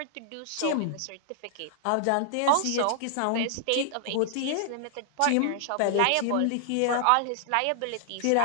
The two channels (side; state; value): both; different; correlation -0.01